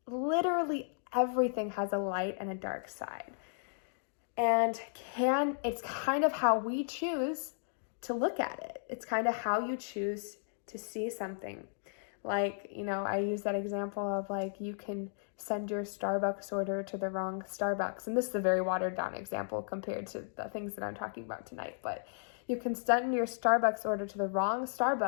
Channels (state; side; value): silent; right; digital silence